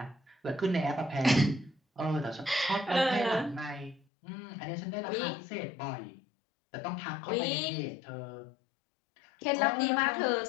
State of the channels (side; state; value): right; drops out; at 4.0 s